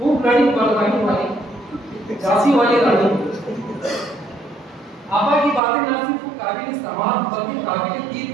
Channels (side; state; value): left; drops out; at 5.6 s